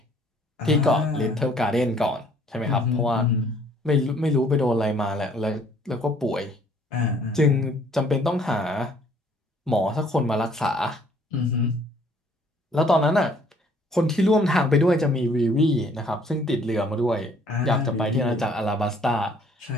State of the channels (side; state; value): both; normal; correlation 0.60